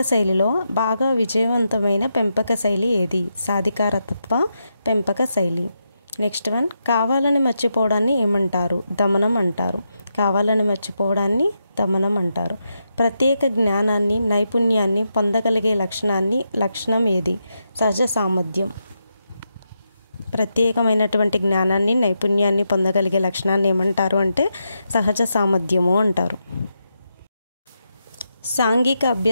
శైలిలో బాగా విజయవంతమైన పెంపక శైలి ఏది? సాధికారతత్వ పెంపక శైలి. నెక్స్ట్ వన్, కావాలని మర్చిపోవడాన్ని ఏమంటారు? దమనం అంటారు. కావాలని మర్చిపోవడాన్ని దమనం అంటారు. ప్రత్యేక జ్ఞానాన్ని, నైపుణ్యాన్ని పొందగలిగే లక్షణం ఏది? సహజ సామర్థ్యం. ప్రత్యేకమైనటువంటి జ్ఞానాన్ని, నైపుణ్యాన్ని పొందగలిగే లక్షణాన్ని ఏమంటారు అంటే సహజ సామర్థ్యము అంటారు. సాంఘిక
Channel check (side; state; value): both; inverted; correlation -0.85